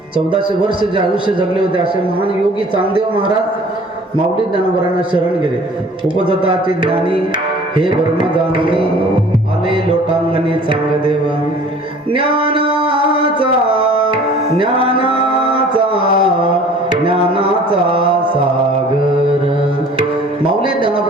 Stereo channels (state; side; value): normal; both; correlation 0.49